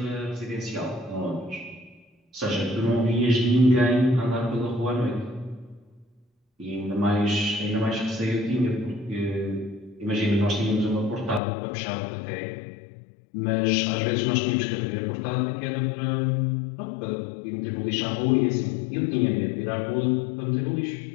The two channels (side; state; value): right; drops out; at 11.4 s